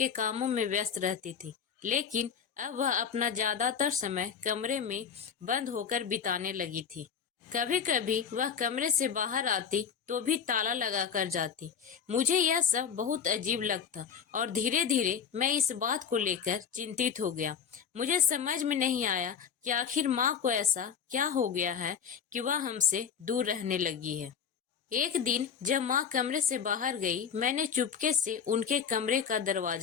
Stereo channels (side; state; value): right; quieter; 7.4 dB